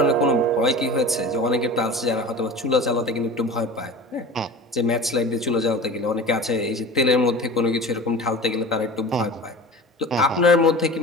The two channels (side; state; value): both; normal; correlation 0.36